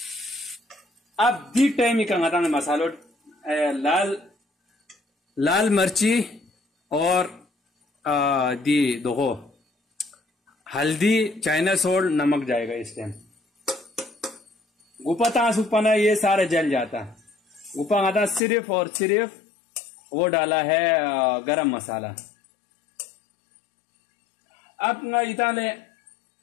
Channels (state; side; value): drops out; right; at 18.4 s